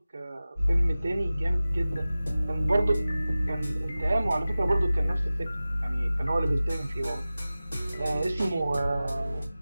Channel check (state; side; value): inverted; both; correlation -0.96